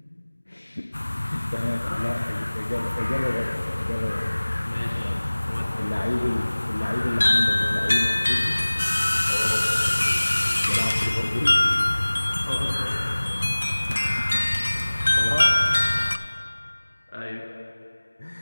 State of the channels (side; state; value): both; inverted; correlation -1.00